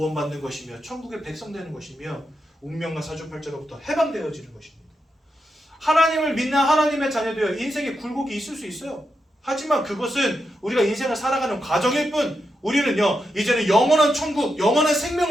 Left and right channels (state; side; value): normal; both; correlation 0.86